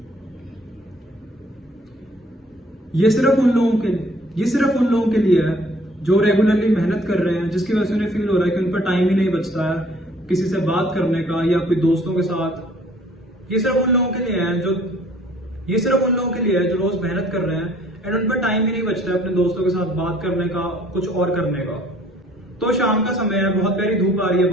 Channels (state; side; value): normal; both; correlation 0.58